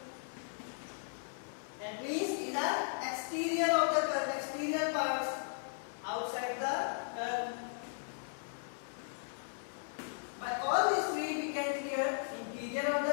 That means these are exterior of the curve, exterior parts outside the curve. By all these three we can clear interior of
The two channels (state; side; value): silent; right; 53 dB below the other